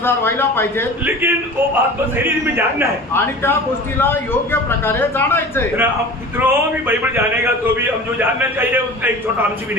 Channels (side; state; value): both; normal; correlation 0.38